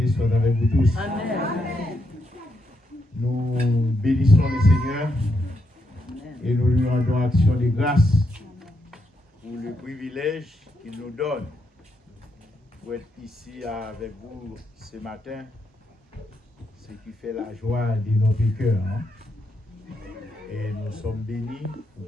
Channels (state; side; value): normal; both; correlation 0.80